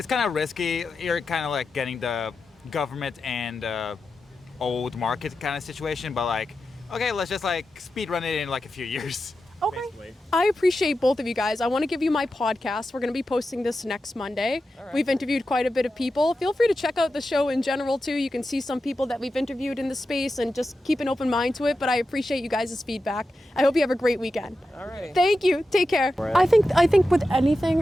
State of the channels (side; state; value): both; normal; correlation 0.91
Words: kind of risky. You're kind of like getting the government and old market kind of situation, but like, okay, let's just like speed run it in like a few years. Okay. Basically. I appreciate both of you guys. I want to give you my podcast. We're going to be posting this next Monday. We've interviewed quite a bit of people. Feel free to check out the show in general too. You can see some people that we've interviewed in the space and just keep an open mind to it. But I appreciate you guys' feedback. I hope you have a great weekend. all right. Thank you. Take care. I think with anything,